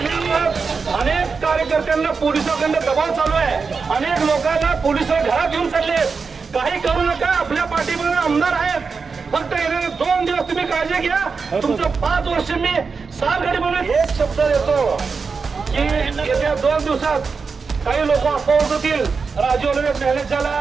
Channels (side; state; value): left; quieter; 5.0 dB